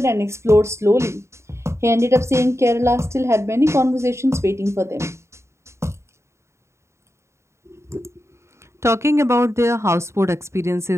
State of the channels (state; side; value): late; left; 0.13 ms